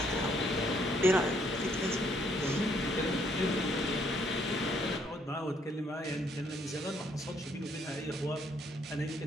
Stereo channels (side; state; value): both; normal; correlation 0.69